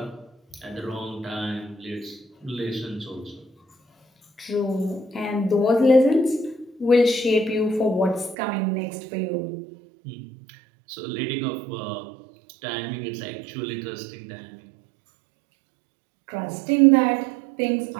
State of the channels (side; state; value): left; drops out; at 8.3 s